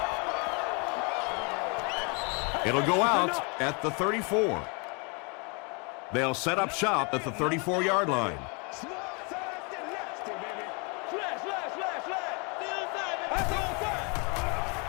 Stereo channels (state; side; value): quieter; right; 32.8 dB